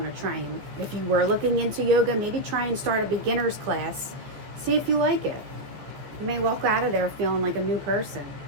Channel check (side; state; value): left; late; 14 ms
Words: to try and, if you were looking into yoga, maybe try and start a beginner's class. See if you like it. You may walk out of there feeling like a new person.